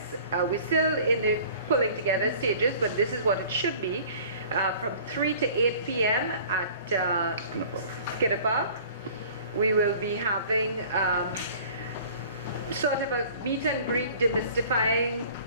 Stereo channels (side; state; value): both; inverted; correlation -0.48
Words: We're still in the pulling together stages, but this is what it should be. From 3 to 8 p.m. at Skinner Park. We will be having sort of a meet and greet, demystifying,